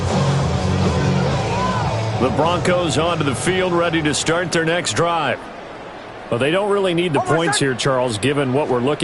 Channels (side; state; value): both; identical; correlation 1.00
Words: The Broncos onto the field, ready to start their next drive. Well, they don't really need the points here, Charles, given what we're